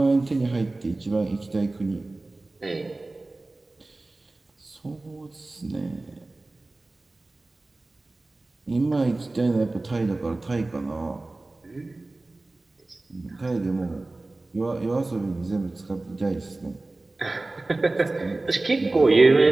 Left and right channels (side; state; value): left; quieter; 3.0 dB